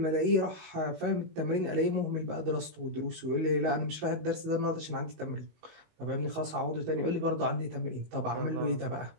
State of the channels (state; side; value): late; left; 19 ms